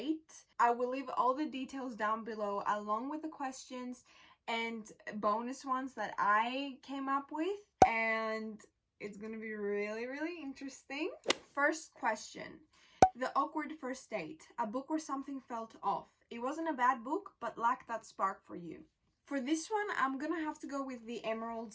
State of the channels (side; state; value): both; identical; correlation 1.00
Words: I will leave all the details down below along with the questions and bonus ones that I came up with, and it's gonna be really interesting. First question. The awkward first date. A book where something felt off. It wasn't a bad book, but lacked that spark for you. For this one, I'm gonna have to go with The Emerald